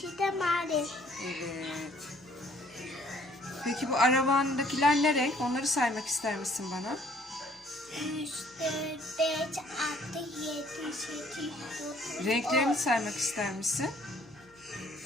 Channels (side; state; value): left; noise; hum, 30 dB below the sound